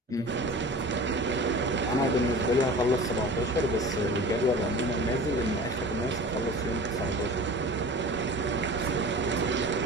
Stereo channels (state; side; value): normal; both; correlation 0.38